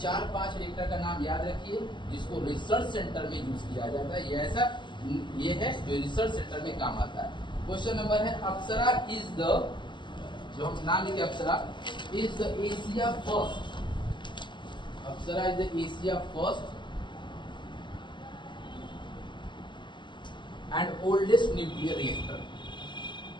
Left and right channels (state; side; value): late; right; 0.23 ms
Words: रिएक्टर का नाम याद रखिए जिसको रिसर्च सेंटर में यूज किया जाता है, ये है जो रिसर्च सेंटर में काम आता है। क्वेश्चन नंबर है अप्सरा इज द, जो हम नाम लिखे Apsara is the Asia first, Apsara is the Asia first and oldest nuclear reactor.